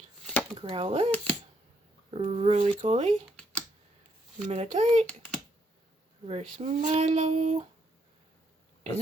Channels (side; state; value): both; normal; correlation 0.74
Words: Growlithe. Roly-Poly. Meditite. Reverse Milo.